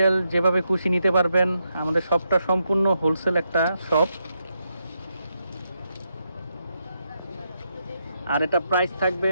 যেভাবে খুশি নিতে পারবেন। আমাদের শপটা সম্পূর্ণ হোলসেল একটা শপ। আর এটা প্রাইস থাকবে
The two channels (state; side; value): inverted; both; correlation -0.82